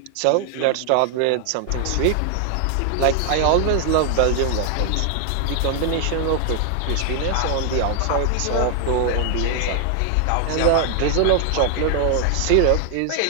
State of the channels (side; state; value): both; different; correlation 0.00